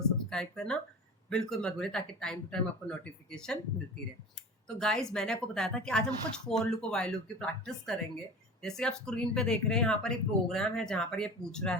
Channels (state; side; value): normal; both; correlation 0.35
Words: सब्सक्राइब करना बिल्कुल मत भूलिए ताकि टाइम टू टाइम आपको नोटिफिकेशन मिलती रहे. तो गाइज मैंने आपको बताया था कि आज हम कुछ फोर लूप और वाइल लूप की प्रैक्टिस करेंगे. जैसे आप स्क्रीन पे देख रहे हैं यहाँ पर एक प्रोग्राम है जहाँ पर ये पूछ रहा